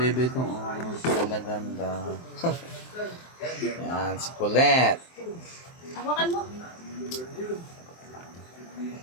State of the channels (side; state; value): right; late; 23 ms